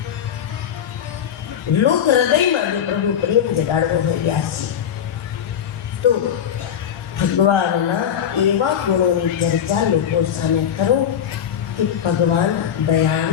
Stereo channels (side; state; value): right; quieter; 9.0 dB